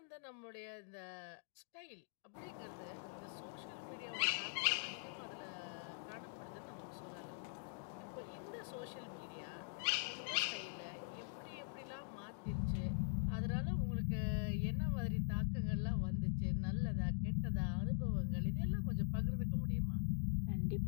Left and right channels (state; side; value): silent; right; digital silence